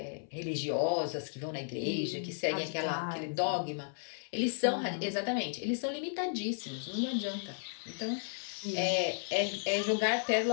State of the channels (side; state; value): right; silent; 55 dB below the other